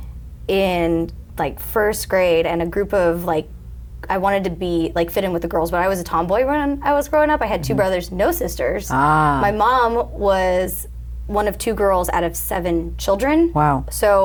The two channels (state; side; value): identical; both; correlation 1.00